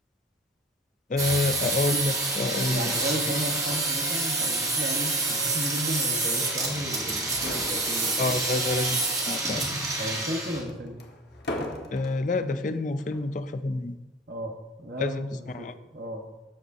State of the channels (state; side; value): normal; both; correlation 0.36